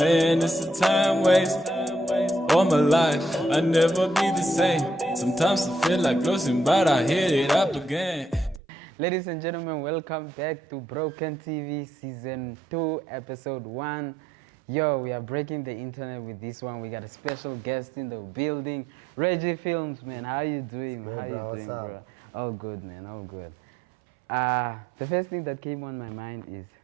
it's a time waste. All my life, I never be the same. Sometimes I feel like losing, but I hit it up again. Ladies and gentlemen, welcome back to Broken TV Season 2, Episode 1. Yo, we are breaking the internet with this one. We got a special guest in the building, Reggie Films, man. How you doing? Good, How bro. you What's doing, up? bro? All good, man. All good. The first thing that came on my mind is,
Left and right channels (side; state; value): left; drops out; at 8.6 s